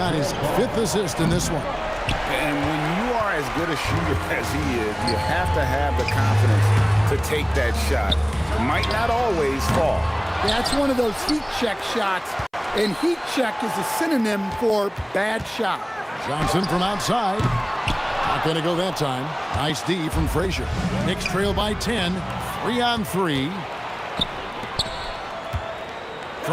his 5th assist in this one. And when you are as good a shooter as he is, you have to have the confidence to take that shot. Might not always fall. That's one of those heat check shots, and heat check is a synonym for bad shot. Johnson from outside. Not going to go that time. Nice D from Frazier. Knicks trail by 10. 3-on-3.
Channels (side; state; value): both; identical; correlation 1.00